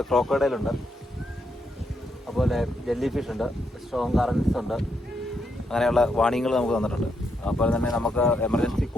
ക്രോക്കോഡൈലുണ്ട്, അതുപോലെ ജെല്ലി ഫിഷ് ഉണ്ട്, സ്ട്രോങ് കറൻസ് ഉണ്ട്, അങ്ങനെയുള്ള വാണിങ്ങൾ നമുക്ക് തന്നിട്ടുണ്ട്. അപ്പോൾ തന്നെ നമുക്ക് എമർജൻസി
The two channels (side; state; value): both; normal; correlation 0.79